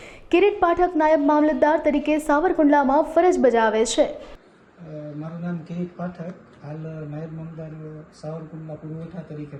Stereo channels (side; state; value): both; identical; correlation 1.00